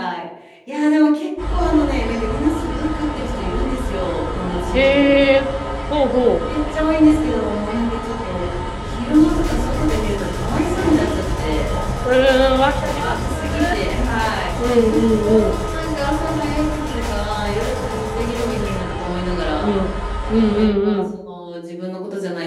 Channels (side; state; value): both; identical; correlation 1.00